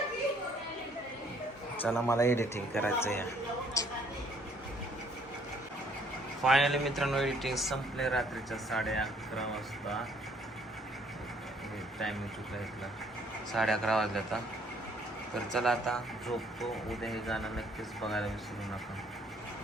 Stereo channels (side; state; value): both; normal; correlation 0.62